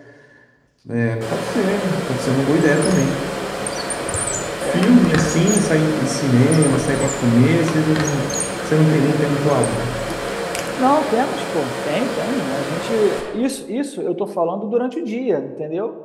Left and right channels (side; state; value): both; identical; correlation 1.00